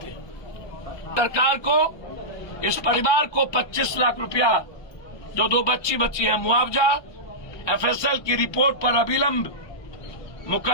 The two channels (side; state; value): right; late; 1.2 ms